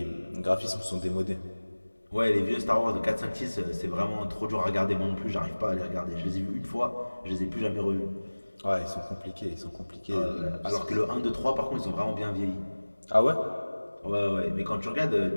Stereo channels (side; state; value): both; inverted; correlation -1.00